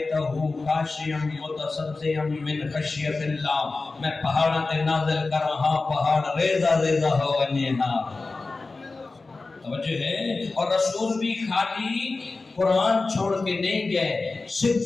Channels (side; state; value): right; quieter; 3.7 dB